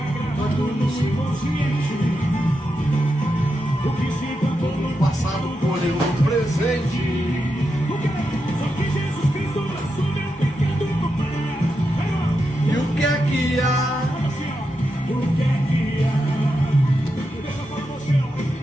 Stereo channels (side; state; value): both; normal; correlation 0.86